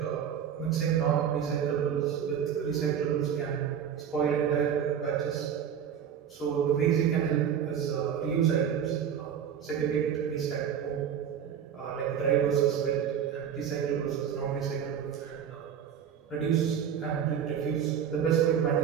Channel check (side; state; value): left; quieter; 8.5 dB